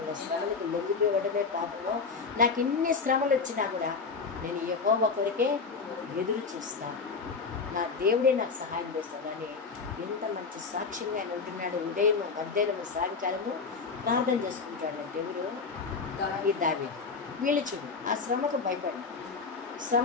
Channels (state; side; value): quieter; right; 4.9 dB